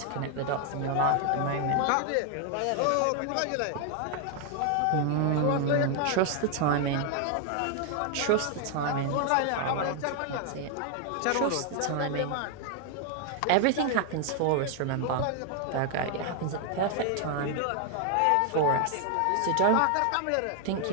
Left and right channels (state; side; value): different; both; correlation 0.00